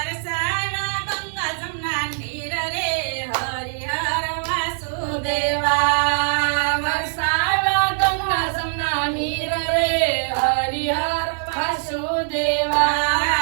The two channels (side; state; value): left; silent; digital silence